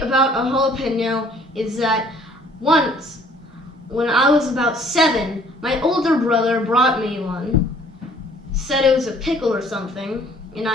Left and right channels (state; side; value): normal; both; correlation 0.57